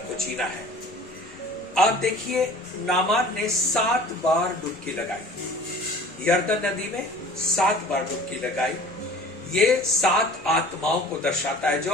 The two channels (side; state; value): both; normal; correlation 0.45